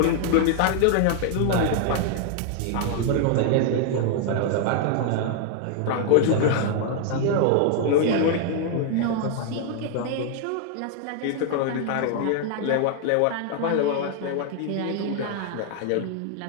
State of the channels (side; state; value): both; different; correlation 0.00